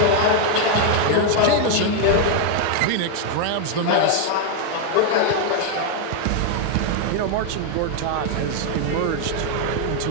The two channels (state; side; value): different; both; correlation 0.01